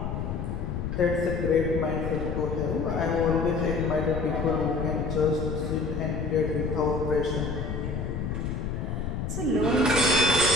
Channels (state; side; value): noise; left; rumble, 3 dB below the sound